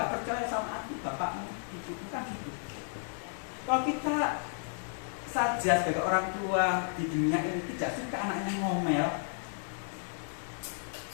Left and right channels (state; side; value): silent; right; 56 dB below the other